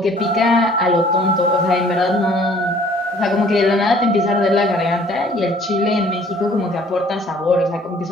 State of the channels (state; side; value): normal; both; correlation 0.56